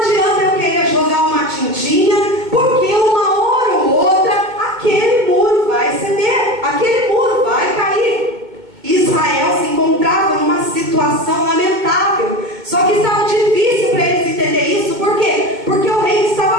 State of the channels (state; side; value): late; left; 2.1 ms